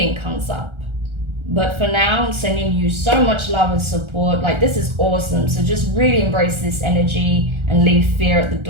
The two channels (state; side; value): late; left; 1.4 ms